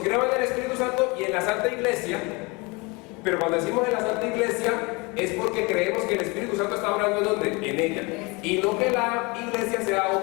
creo en el Espíritu Santo y en la Santa Iglesia, pero cuando decimos en la Santa Iglesia es porque creemos que el Espíritu Santo está hablando ¿en dónde? En ella. Y no que la Iglesia sea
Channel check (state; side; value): quieter; right; 27.1 dB